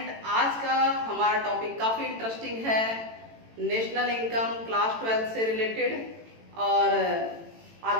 आज का हमारा टॉपिक काफ़ी इंटरेस्टिंग है, नेशनल इनकम क्लास 12 से रिलेटेड। और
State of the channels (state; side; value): late; left; 18 ms